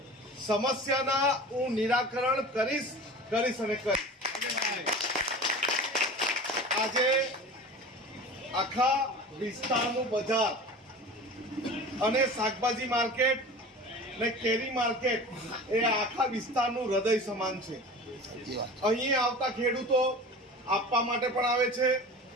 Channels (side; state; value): both; normal; correlation 0.36